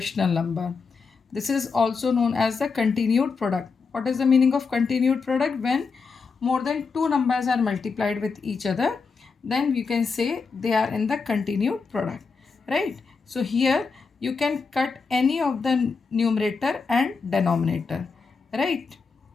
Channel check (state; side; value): quieter; right; 4.9 dB